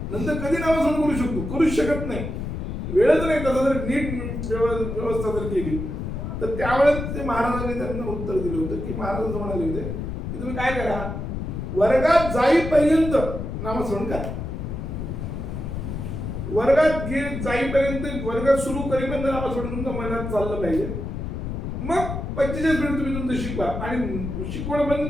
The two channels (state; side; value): noise; left; rumble, 5 dB below the sound